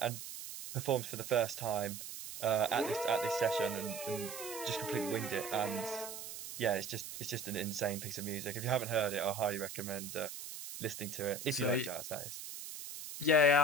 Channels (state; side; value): noise; right; hiss, 9 dB below the sound